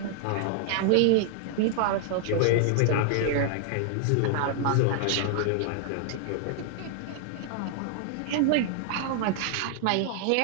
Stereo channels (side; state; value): both; different; correlation 0.00